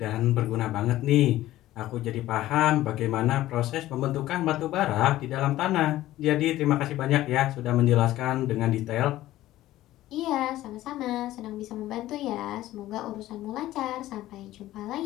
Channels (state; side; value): quieter; right; 15.1 dB